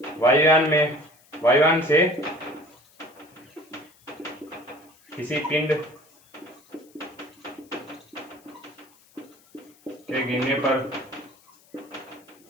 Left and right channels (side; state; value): left; noise; hiss, 29 dB below the sound